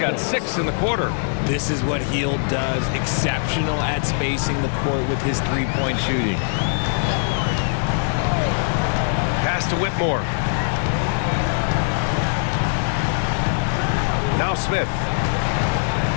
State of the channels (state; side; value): silent; right; digital silence